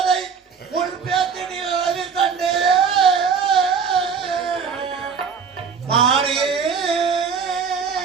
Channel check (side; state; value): left; quieter; 6.2 dB